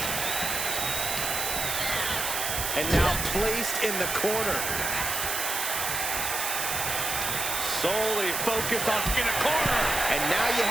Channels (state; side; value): noise; right; hiss, 1 dB below the sound